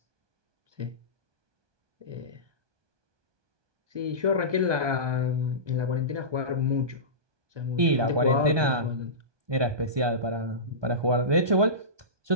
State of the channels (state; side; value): late; left; 1.2 ms